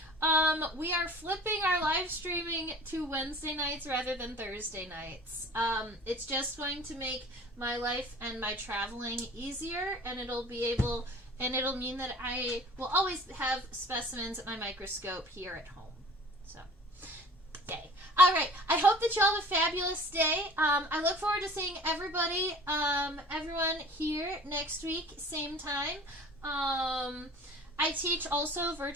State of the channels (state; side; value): normal; both; correlation 0.45